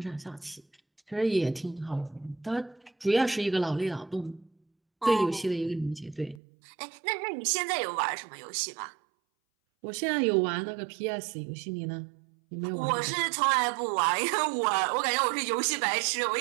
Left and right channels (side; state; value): left; drops out; at 6.4 s